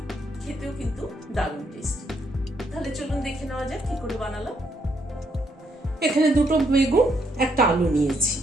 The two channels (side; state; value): both; normal; correlation 0.73